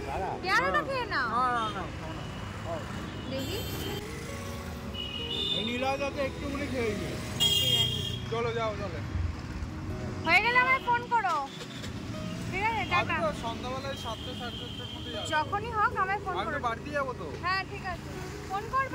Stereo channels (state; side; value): identical; both; correlation 1.00